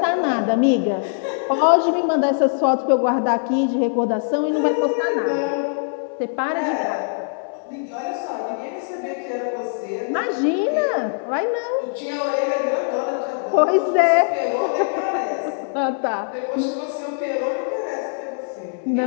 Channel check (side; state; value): right; silent; digital silence